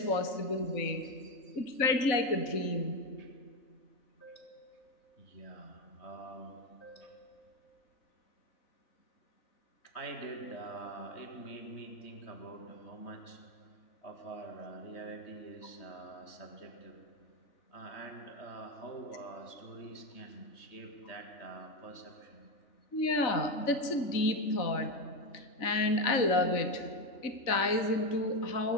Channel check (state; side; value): late; right; 4.0 ms